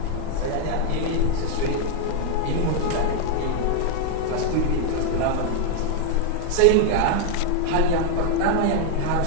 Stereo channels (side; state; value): both; different; correlation 0.00